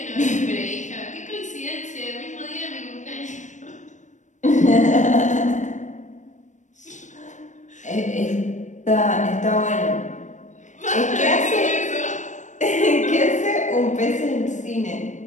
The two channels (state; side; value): late; right; 0.35 ms